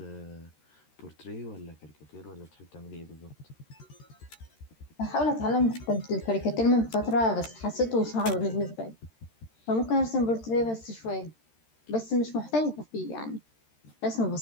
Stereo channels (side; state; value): right; late; 13 ms